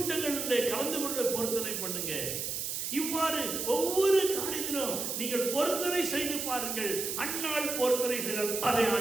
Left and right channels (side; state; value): right; noise; hiss, 3 dB below the sound